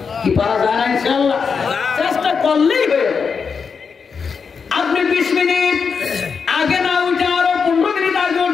কি পারা যায় না ইনশাআল্লাহ? চেষ্টা করলেই হয়ে যাবে। আপনি 20 মিনিট আগে না উঠে আরো 15 মিনিট আগে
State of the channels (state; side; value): quieter; right; 5.8 dB